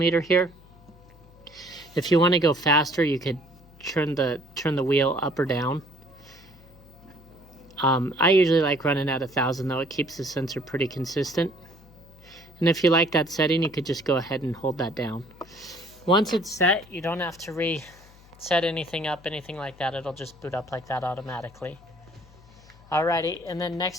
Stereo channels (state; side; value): noise; left; hum, 24 dB below the sound